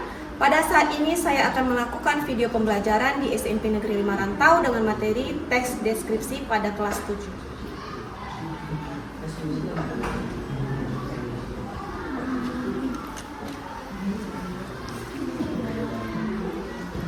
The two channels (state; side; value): identical; both; correlation 1.00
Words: Pada saat ini saya akan melakukan video pembelajaran di SMP Negeri 5 Rantau dengan materi teks deskripsi pada kelas 7.